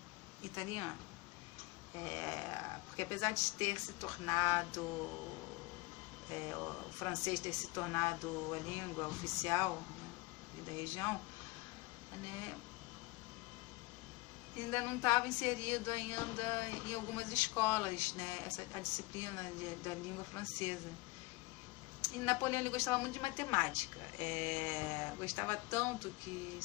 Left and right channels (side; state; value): right; quieter; 22.3 dB